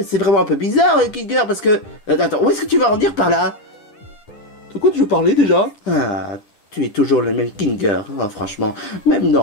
C'est vraiment un peu bizarre, Kilger, parce que... Attends, où est-ce que tu vas en venir par là? De quoi tu veux parler, déjà? Ah, tu es toujours le même Kilger, hein, franchement. Même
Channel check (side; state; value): right; late; 9.8 ms